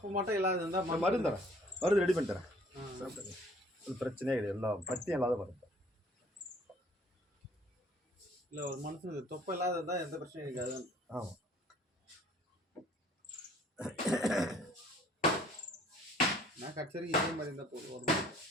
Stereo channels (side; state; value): both; normal; correlation 0.56